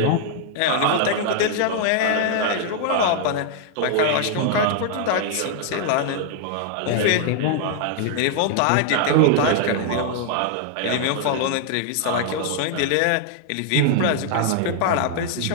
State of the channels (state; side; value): different; both; correlation -0.01